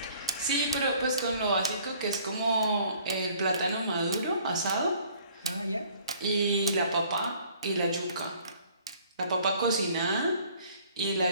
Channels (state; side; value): inverted; both; correlation -0.56